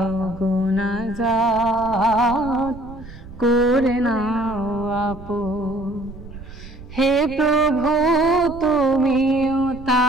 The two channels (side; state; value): right; noise; rumble, 16 dB below the sound